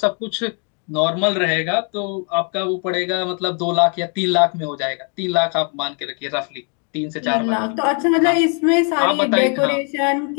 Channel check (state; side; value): quieter; right; 39.6 dB